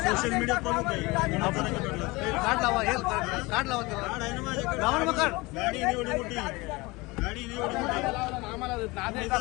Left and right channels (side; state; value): right; quieter; 23.5 dB